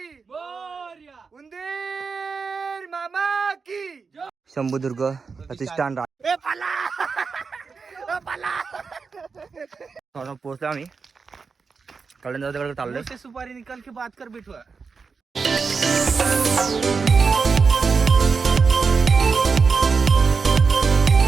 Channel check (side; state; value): left; quieter; 5.0 dB